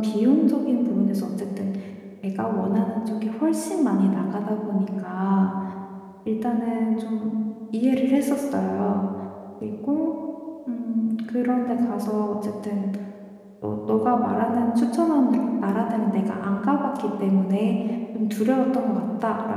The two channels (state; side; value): identical; both; correlation 1.00